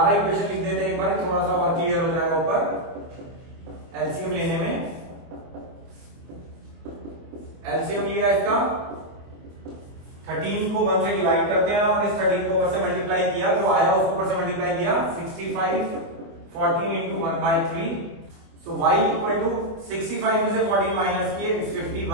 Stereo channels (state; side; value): late; left; 24 ms